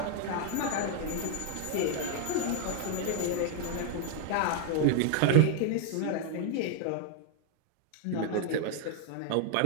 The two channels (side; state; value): both; different; correlation 0.00